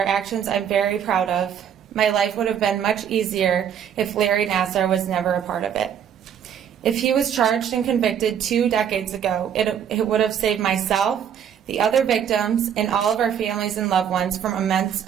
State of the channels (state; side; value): quieter; left; 8.8 dB